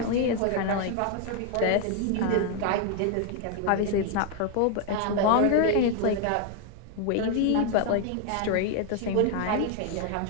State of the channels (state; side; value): different; both; correlation 0.01